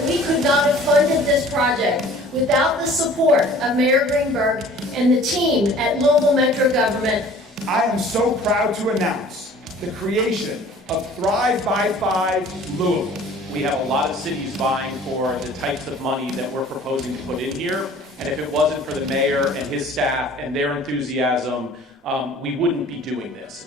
we could not have funded this project without the support of Mayor Greenberg and the team at Louisville Metro Government. I am so proud to announce the creation of Thrive by 5 Louisville. We have a lot of cities vying for the types of money that we're proposing to put in here. And if it wasn't for the mayor and his staff and their enthusiasm, we wouldn't be doing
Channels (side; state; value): both; normal; correlation 0.49